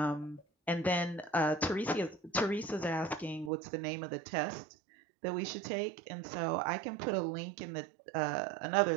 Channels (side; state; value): left; drops out; at 3.5 s